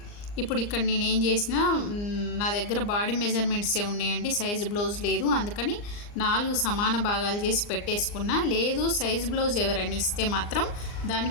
ఇప్పుడు ఇక్కడ నేను ఏం చేసిన, నా దగ్గర బాడీ మెజర్మెంట్సే ఉన్నాయండి, సైజ్ బ్లౌజ్ లేదు, అందుకని 4 సమాన భాగాలు చేసి పెట్టేసుకున్నా. లేదు సైజ్ బ్లౌజ్ ఎవరైనా ఇస్తే మాత్రం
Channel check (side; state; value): right; late; 39 ms